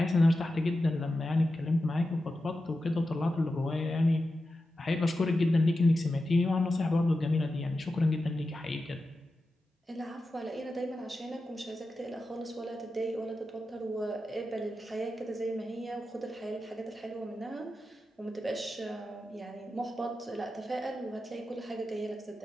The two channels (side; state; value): both; normal; correlation 0.91